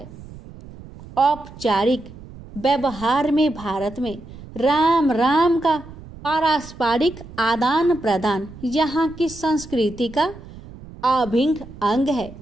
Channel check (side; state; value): right; noise; rumble, 17 dB below the sound